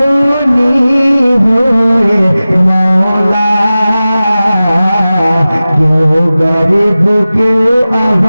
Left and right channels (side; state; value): both; inverted; correlation -0.96